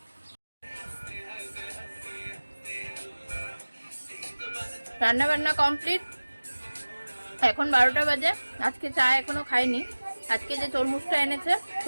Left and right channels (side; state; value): both; inverted; correlation -1.00